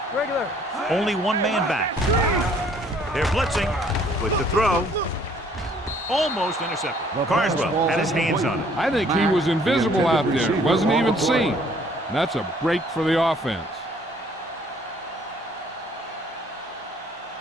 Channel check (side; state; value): both; normal; correlation 0.60